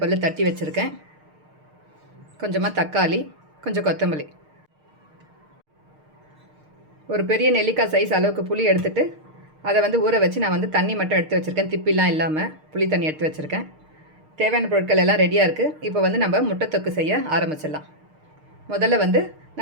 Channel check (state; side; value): late; left; 6.5 ms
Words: பல்லு தட்டி வச்சுருக்கேன். கொஞ்சமாக தக்காளி, கொஞ்சம் கொத்தமல்லி, ஒரு பெரிய நெல்லிக்காய் சைஸ் அளவுக்கு புளி எடுத்துகிட்டு அதை வந்து ஊற வச்சு நான் வந்து தண்ணி மட்டும் எடுத்து வச்சுருக்கேன். திப்பிலாம் இல்லாமல் புளி தண்ணி எடுத்து வச்சுருக்கேன். தேவையான பொருட்கள் எல்லாம் ரெடியாக இருக்குது. இப்போ வந்து நம்ம முட்டை தொக்கு செய்ய ஆரம்பிச்சிடலாம். முதல்ல வந்து